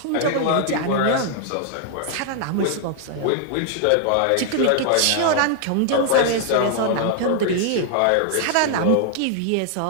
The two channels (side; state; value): both; different; correlation 0.00